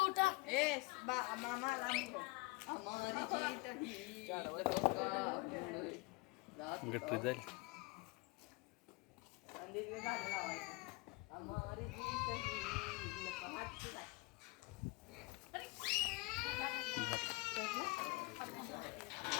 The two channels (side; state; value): right; quieter; 24.6 dB